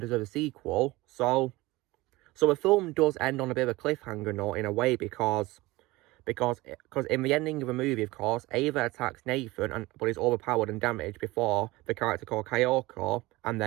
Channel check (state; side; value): quieter; left; 20.5 dB